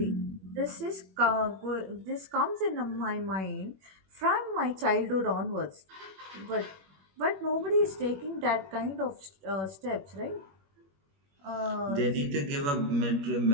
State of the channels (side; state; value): left; late; 21 ms